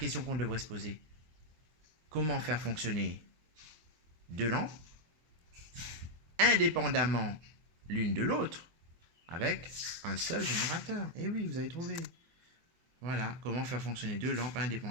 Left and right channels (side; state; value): left; late; 24 ms